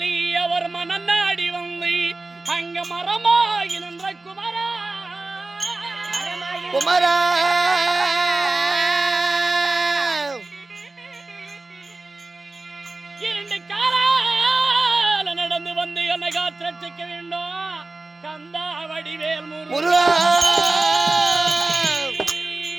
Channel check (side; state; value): left; quieter; 3.2 dB